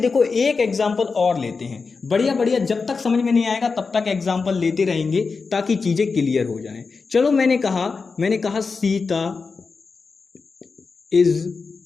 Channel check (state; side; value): quieter; right; 4.7 dB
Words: एक एग्जाम्पल और लेते हैं, बढ़िया बढ़िया, जब तक समझ में नहीं आएगा तब तक एग्जाम्पल लेते रहेंगे ताकि चीजें क्लियर हो जाएं। चलो मैंने कहा Sita is